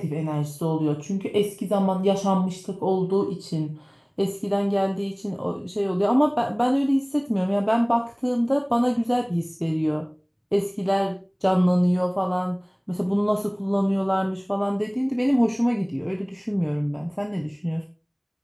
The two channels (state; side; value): identical; both; correlation 1.00